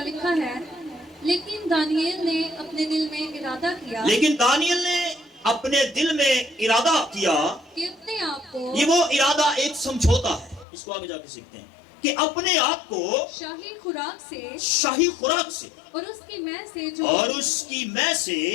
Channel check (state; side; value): drops out; right; at 10.7 s